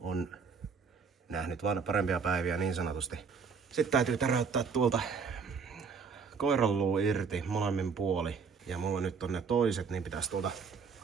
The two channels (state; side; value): quieter; left; 5.7 dB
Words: nähnyt vaan parempia päiviä niin sanotusti. Sitten täytyy täräyttää tuolta koiranluu irti molemmin puoli. Ja mulla nyt on ne toiset, niin pitäisi tuolta